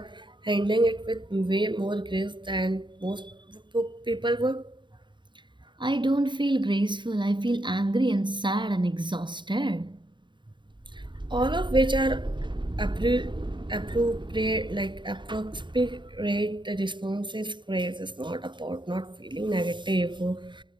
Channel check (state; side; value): late; left; 0.23 ms